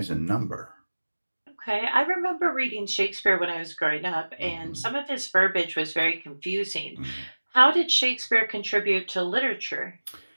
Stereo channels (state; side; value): inverted; both; correlation -1.00